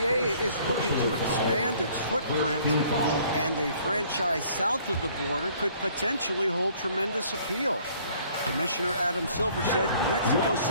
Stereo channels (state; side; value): inverted; both; correlation -0.58